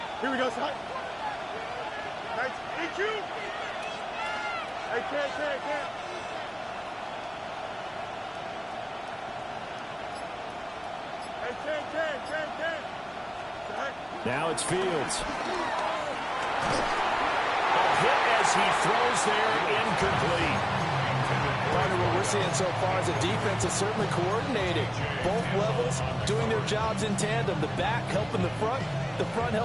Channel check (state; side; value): identical; both; correlation 1.00